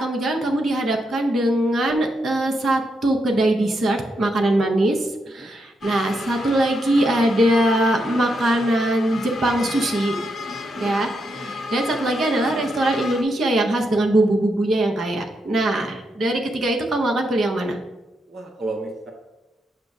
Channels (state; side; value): normal; both; correlation 0.82